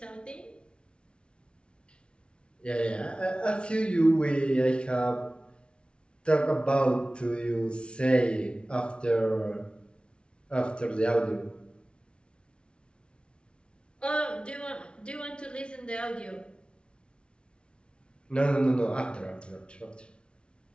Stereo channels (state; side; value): late; right; 0.057 ms